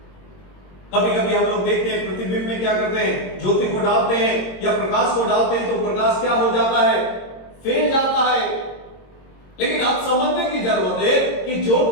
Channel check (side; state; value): right; late; 22 ms